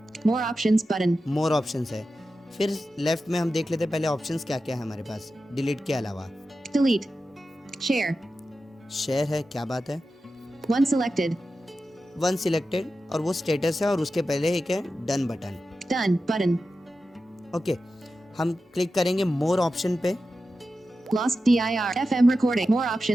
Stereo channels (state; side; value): normal; both; correlation 0.92